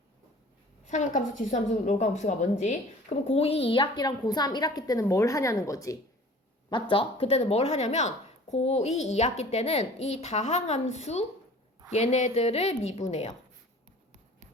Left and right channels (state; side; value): normal; both; correlation 0.46